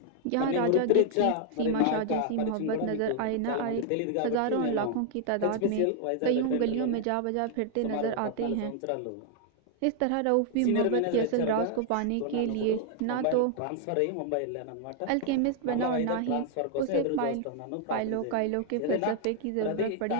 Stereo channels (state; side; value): different; both; correlation 0.00